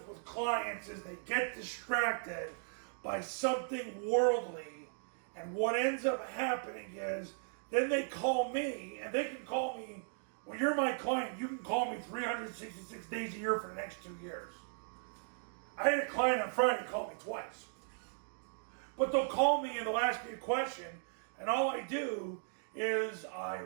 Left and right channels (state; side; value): silent; left; digital silence